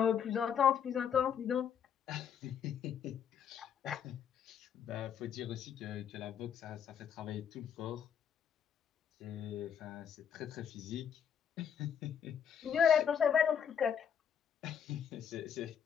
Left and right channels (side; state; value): right; quieter; 8.2 dB